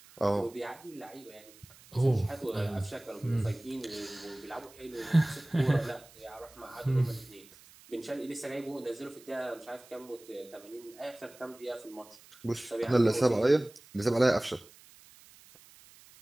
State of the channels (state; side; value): noise; right; hiss, 23 dB below the sound